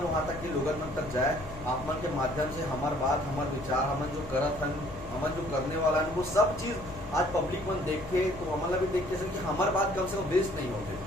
वहाँ तक के लोगन मन तक जाए आप मन के माध्यम से हमार बात हमार विचार हमन जो करत हन हमन जो करने वाला है वो सब चीज आज पब्लिक मन देखे तो हमारा भी देखते हैं कि हमार बात कम से कम वेस्ट नहीं होते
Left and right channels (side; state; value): both; normal; correlation 0.59